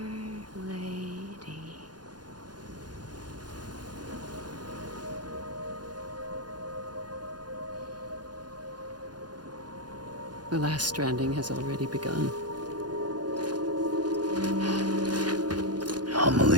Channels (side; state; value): left; late; 0.70 ms